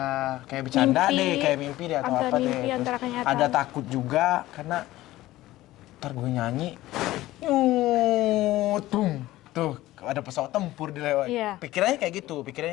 bercanda deh, kayak mimpi deh atau apa deh. Terus ada takut juga karena ntar gue nyanyi, tuh ada pesawat tempur di lewat. Pikirannya kayak gitu.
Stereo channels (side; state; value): right; quieter; 16.4 dB